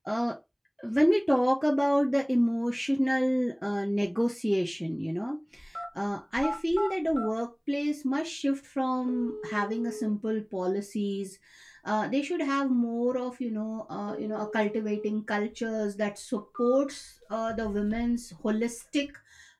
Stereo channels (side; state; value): both; identical; correlation 1.00